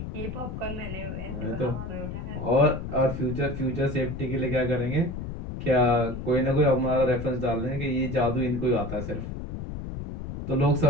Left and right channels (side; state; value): left; noise; rumble, 7 dB below the sound